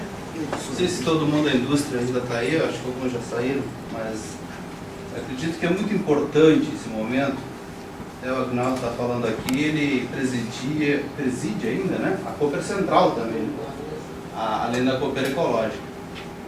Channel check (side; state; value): both; identical; correlation 1.00